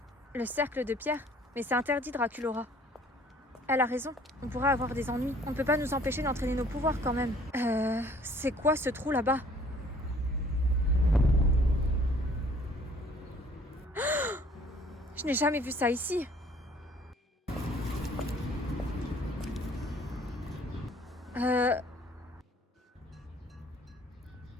Le cercle de pierre? Mais c'est interdit, Draculaura. Elle a raison, on pourrait avoir des ennuis. On ne peut pas nous empêcher d'entraîner nos pouvoirs quand même. C'est quoi ce trou là-bas? Je n'ai jamais vu ça ici.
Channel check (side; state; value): both; normal; correlation 0.56